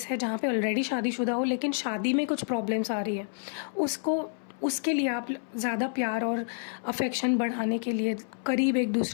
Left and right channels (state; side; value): silent; right; 59 dB below the other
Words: है जहाँ पे ऑलरेडी शादीशुदा हो लेकिन शादी में कुछ प्रॉब्लम्स आ रही है, उसके लिए आप ज़्यादा प्यार और अफेक्शन बढ़ाने के लिए, करीब एक